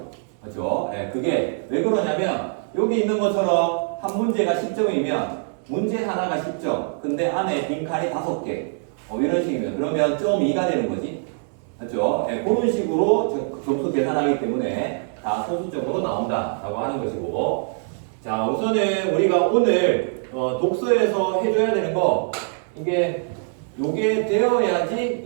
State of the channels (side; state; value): left; silent; 63 dB below the other